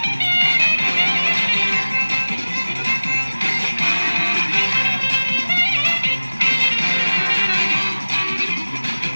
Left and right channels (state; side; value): inverted; both; correlation -1.00